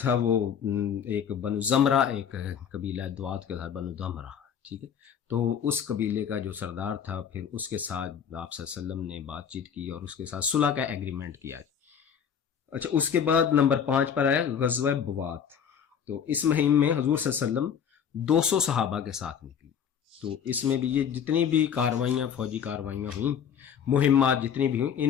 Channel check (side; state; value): right; quieter; 7.9 dB